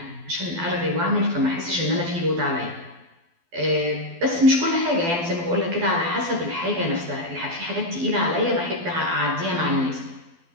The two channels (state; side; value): late; left; 12 ms